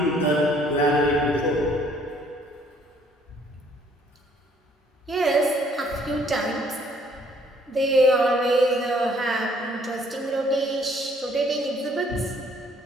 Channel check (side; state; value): both; normal; correlation 0.63